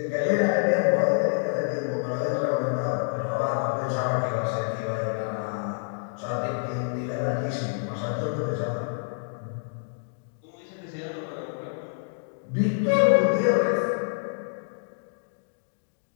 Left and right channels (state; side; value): silent; right; digital silence